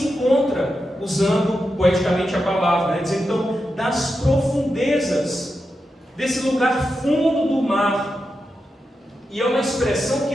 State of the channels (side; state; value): both; normal; correlation 0.88